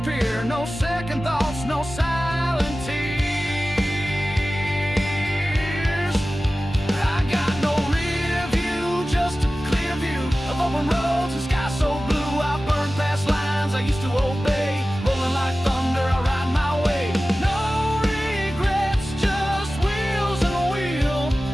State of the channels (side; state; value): both; normal; correlation 0.96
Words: no second thoughts, no silent tears. I got no rear view, just a clear view of open roads and sky so blue. I burn past lines I used to obey, rolling like thunder I ride my way. No regrets, just wheels and a wheel.